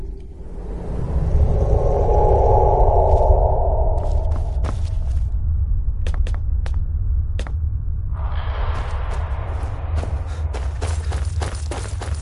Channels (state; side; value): identical; both; correlation 1.00